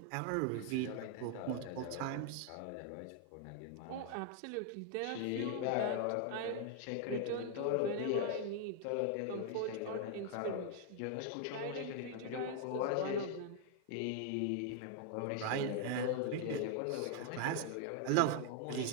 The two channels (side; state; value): both; different; correlation 0.00